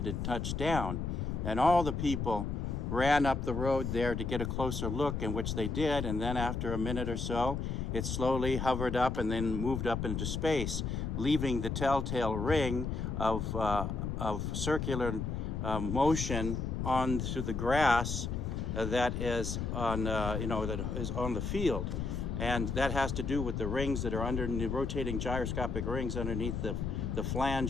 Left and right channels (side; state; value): left; noise; rumble, 2 dB below the sound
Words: and touched down. And all the people ran up the road there to get a closer look, in which they did. And then after a minute or so, it slowly hovered up and then moved up into space, leaving the telltale ring of circular motion onto the grass that is on that is on the field. And that has to do with the rings that are under the rotating gyroscopic rings underneath the